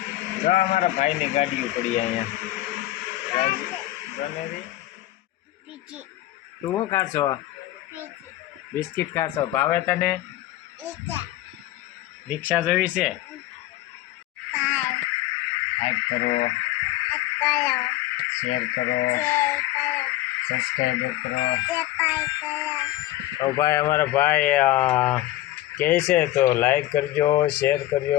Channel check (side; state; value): right; quieter; 15.6 dB